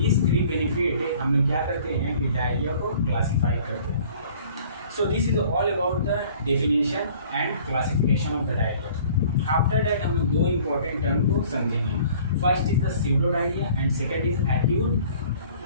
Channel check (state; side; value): inverted; both; correlation -0.52